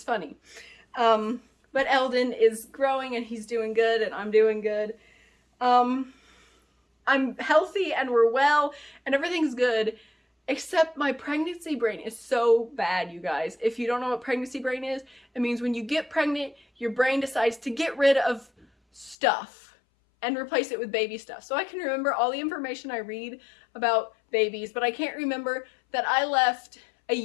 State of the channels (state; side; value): drops out; right; at 19.2 s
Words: funny. But Eldon is growing and he's doing good and I'm doing good. I'm healthy and we're well and everything's good, except my pregnancy brain is so bad, you guys. If you don't know what pregnancy brain is, it means when you get pregnant, your brain decides to get rid of stuff and replace it with baby stuff. So I can remember all the information I read about babies, but I can't remember that I left a